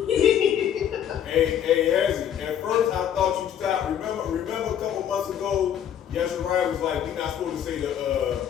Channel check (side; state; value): right; quieter; 9.6 dB